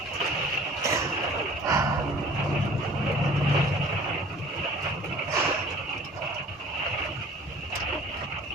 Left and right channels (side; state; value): both; normal; correlation 0.49